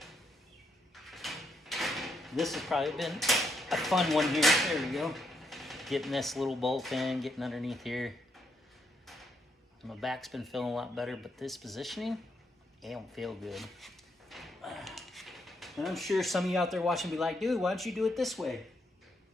This has probably been a fun one here. There we go. Getting this little bolt in, getting underneath here. My back's been feeling a lot better, but this positioning, it don't feel good. And I'm sure some of you out there watching be like, dude, why don't you do it this way?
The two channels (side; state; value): both; normal; correlation 0.76